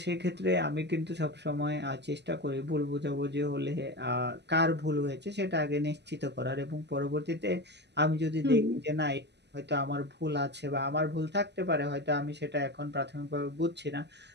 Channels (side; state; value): left; late; 0.50 ms